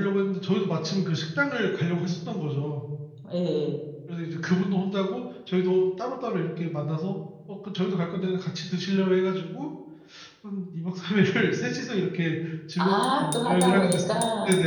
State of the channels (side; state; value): both; identical; correlation 1.00